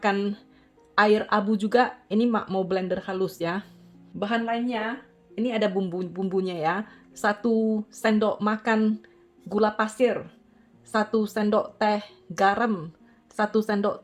air abu juga. Ini Mak mau blender halus ya. Bahan lainnya, ini ada bumbunya ya. 1 sendok makan gula pasir, 1 sendok teh garam, 1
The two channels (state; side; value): identical; both; correlation 1.00